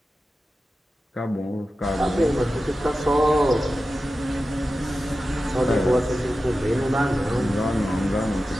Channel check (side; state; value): both; normal; correlation 0.93